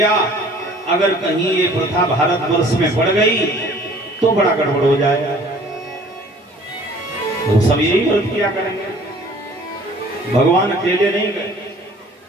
अगर कहीं ये प्रथा भारतवर्ष में बढ़ गई तो बड़ा गड़बड़ हो जाएगा, तो सब यही व्रत किया करेंगे। भगवान अकेले नहीं गए,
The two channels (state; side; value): normal; both; correlation 0.52